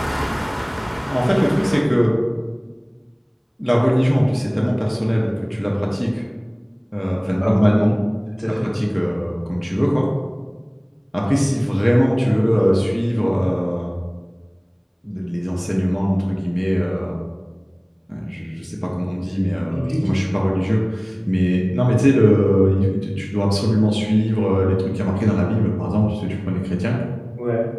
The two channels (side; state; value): both; identical; correlation 1.00